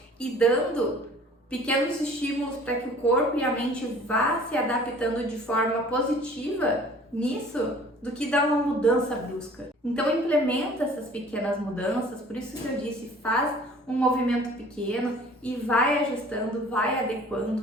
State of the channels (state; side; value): normal; both; correlation 0.50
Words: e dando pequenos estímulos para que o corpo e a mente vá se adaptando de forma positiva nisso, do que dar uma mudança brusca. Então implementa essas pequenas mudanças, por isso que eu disse, faz um movimento pequeno e vai ajustando, vai